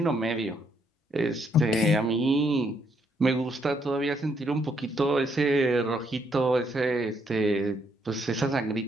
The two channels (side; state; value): both; normal; correlation 0.73